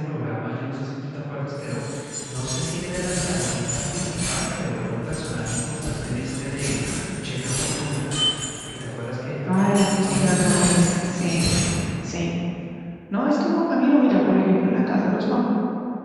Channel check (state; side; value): identical; both; correlation 1.00